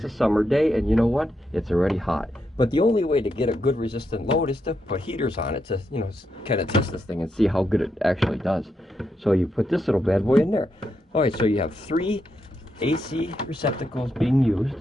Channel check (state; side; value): normal; both; correlation 0.82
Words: a summer day, and you know what? It's already hot. But the only way to get a good resistant load is to put heaters on it to, you know, kind of test this thing and see how good it actually does. So you put this little bad boy in there. All right, so you have 3 AC receptacles being used.